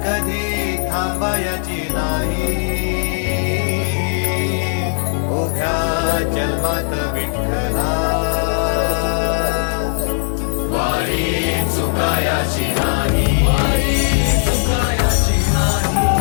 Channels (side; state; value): right; silent; 67 dB below the other